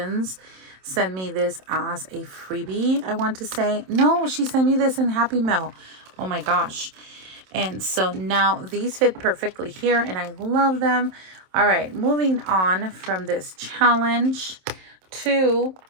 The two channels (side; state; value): left; late; 27 ms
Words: sent me this as a freebie, I want to say. No, she sent me this in Happy Mail. Oh my gosh. And so now these fit perfectly here, and I love them. All right, moving on from this challenge to,